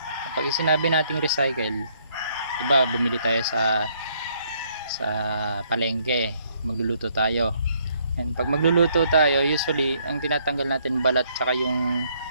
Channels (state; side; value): inverted; both; correlation -0.69